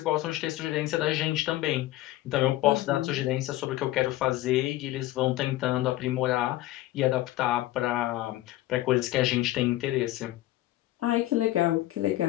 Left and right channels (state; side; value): quieter; right; 16.1 dB